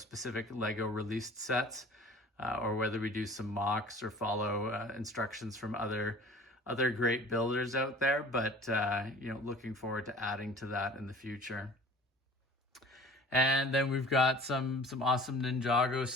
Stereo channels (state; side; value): normal; both; correlation 0.46